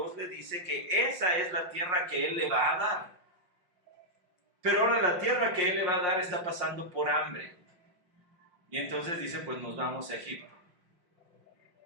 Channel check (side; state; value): left; late; 5.6 ms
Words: le dice que esa es la tierra que Él le va a dar. Pero ahora la tierra que Él le va a dar está pasando por hambre. Y entonces dice, pues nos vamos a Egipto.